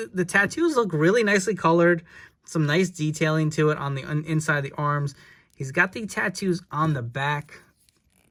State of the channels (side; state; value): both; identical; correlation 1.00